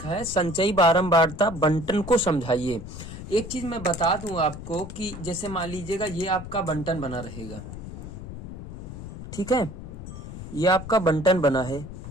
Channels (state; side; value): noise; left; rumble, 11 dB below the sound